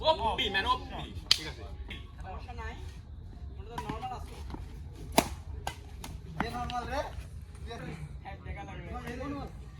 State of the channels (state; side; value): identical; both; correlation 1.00